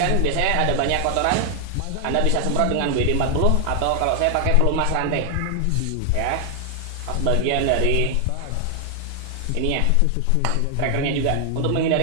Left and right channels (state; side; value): different; both; correlation 0.00